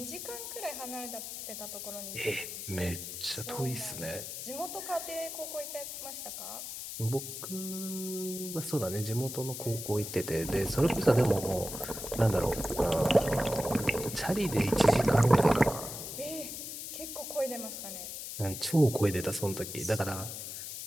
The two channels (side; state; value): left; noise; hiss, 7 dB below the sound